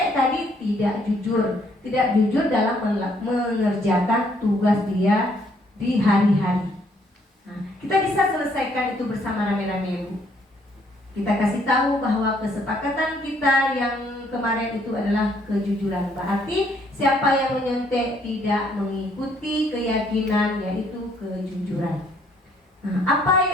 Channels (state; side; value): normal; both; correlation 0.67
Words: tadi tidak jujur dalam mengerjakan tugas dia di hari-hari. Nah, kita bisa selesaikan itu bersama rame-rame, Bu. Kita kasih tahu bahwa kesepakatan kita yang kemarin itu adalah kejujuran. Berarti siapa yang menyontek tidak mengikuti keyakinan yaitu kejujuran. Nah, apa